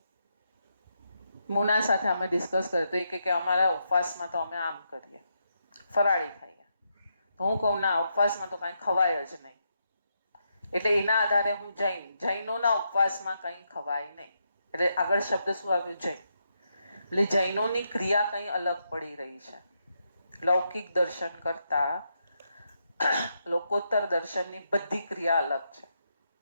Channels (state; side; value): inverted; both; correlation -0.81